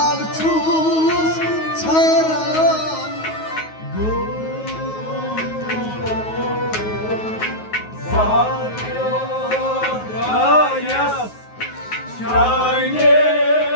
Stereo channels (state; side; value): late; right; 9.4 ms